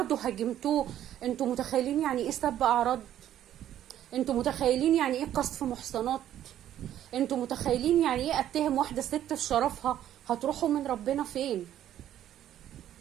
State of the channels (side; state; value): left; quieter; 11.5 dB